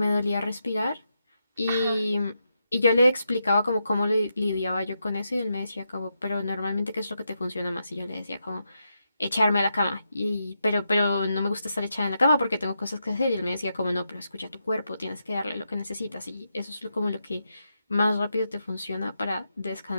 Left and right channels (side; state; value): both; inverted; correlation -0.84